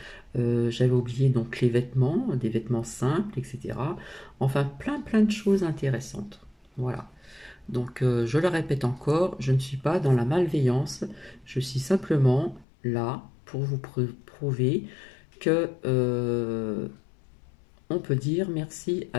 J'avais oublié donc les vêtements, des vêtements simples, etc. Enfin, plein de choses intéressantes. Voilà. Donc, je le répète encore, je ne suis pas dans la malveillance, je suis simplement là pour vous prouver que on peut dire merci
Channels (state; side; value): drops out; right; at 12.7 s